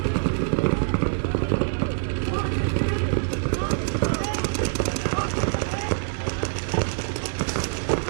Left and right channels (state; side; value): silent; left; 62 dB below the other